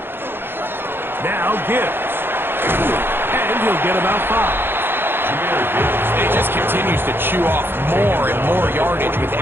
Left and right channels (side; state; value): left; late; 0.10 ms